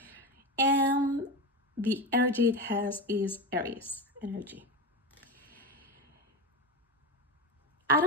And the energy it has is Aries energy. I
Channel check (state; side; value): normal; both; correlation 0.20